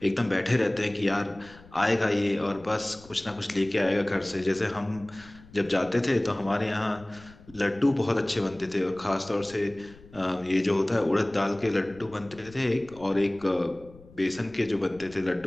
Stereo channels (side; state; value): left; noise; rumble, 22 dB below the sound